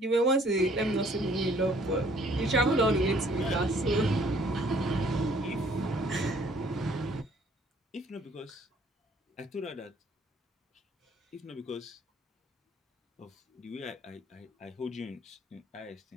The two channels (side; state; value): both; normal; correlation 0.60